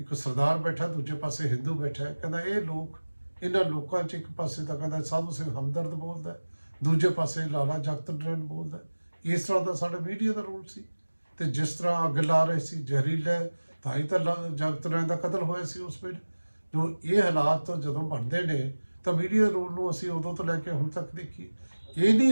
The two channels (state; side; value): inverted; both; correlation -1.00